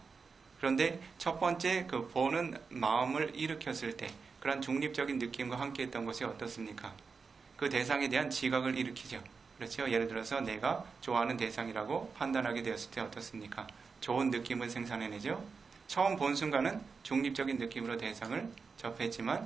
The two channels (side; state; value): left; quieter; 5.0 dB